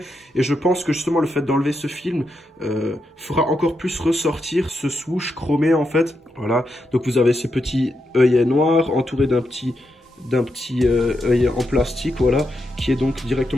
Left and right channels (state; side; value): normal; both; correlation 0.84